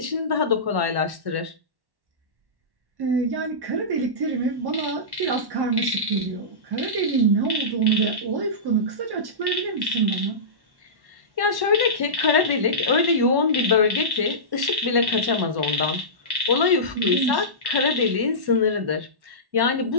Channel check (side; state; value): left; late; 1.1 ms